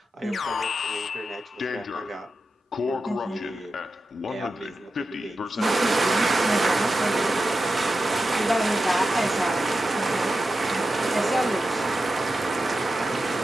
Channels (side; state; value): both; normal; correlation 0.91